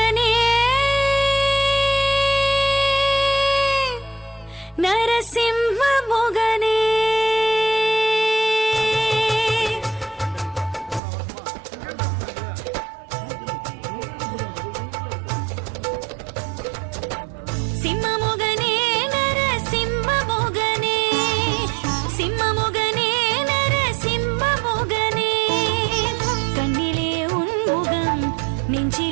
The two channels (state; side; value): drops out; left; at 11.0 s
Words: நரசிம்ம முகனே சிம்மமுகனே நரசிம்ம முகனே சிம்மமுகனே நரசிம்ம முகனே கண்ணிலே உன் முகம்